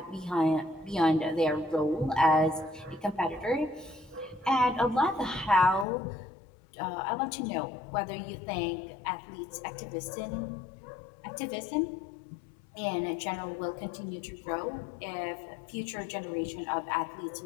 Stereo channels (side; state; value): right; drops out; at 5.9 s